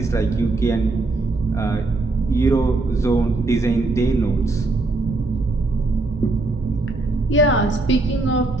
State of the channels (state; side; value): quieter; left; 3.2 dB